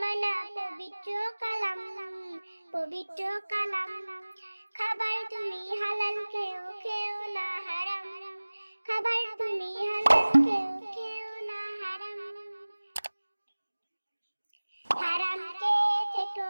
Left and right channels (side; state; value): both; inverted; correlation -1.00